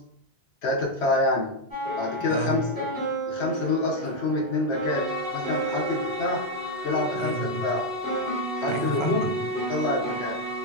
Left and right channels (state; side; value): late; right; 1.3 ms